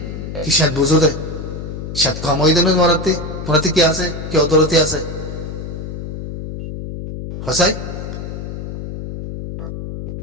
কি সাত বুঝো দে সাত কম হয়ে দেবে তোমারাতে কি আছে কি অদরতি আছে হসাই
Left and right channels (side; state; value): left; noise; hum, 8 dB below the sound